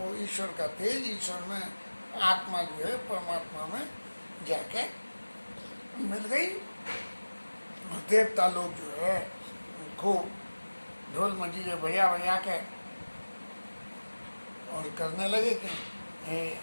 ईश्वर का तेज, ईश्वर में आत्मा जो है परमात्मा में जाके मिल गई। देवता लोग जो है खूब ढोल मंजीरे बजा बजा के और करने लगे कि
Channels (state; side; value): inverted; both; correlation -1.00